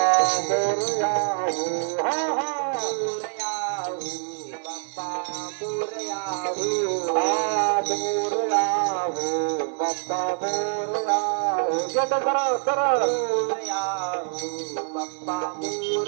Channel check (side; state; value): left; silent; digital silence